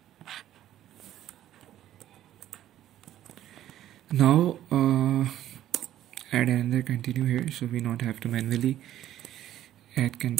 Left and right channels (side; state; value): left; quieter; 12.5 dB